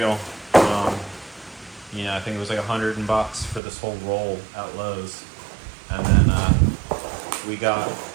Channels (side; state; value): left; drops out; at 3.6 s